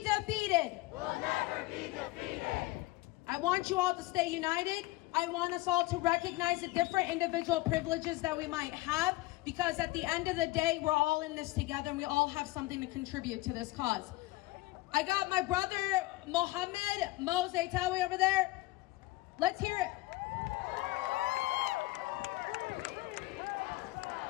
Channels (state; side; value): quieter; right; 19.8 dB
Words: Will never be defeated. I want you all to stay united. I want us all to recognize the different individual privileges that we might have, because at the end of the day, we're all in this together and we all have something to contribute to this cause. I got my brother, Mohammed Mozetawi over there. Let's hear it.